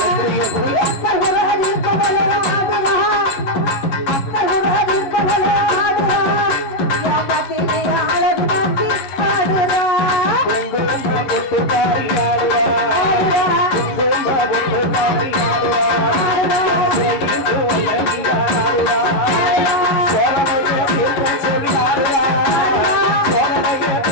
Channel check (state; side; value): late; right; 11 ms